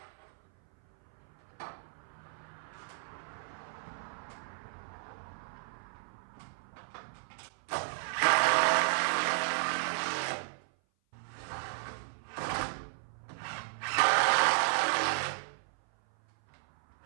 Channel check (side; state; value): left; silent; 55 dB below the other